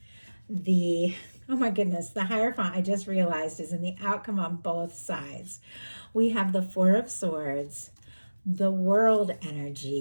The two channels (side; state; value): both; inverted; correlation -1.00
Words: the, oh my goodness, the Hierophant, I just realized, is in the outcome on both sides. We have the Four of Swords, the World